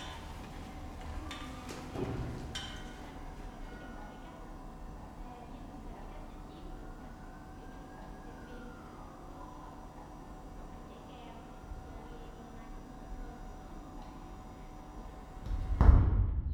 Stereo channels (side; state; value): both; identical; correlation 1.00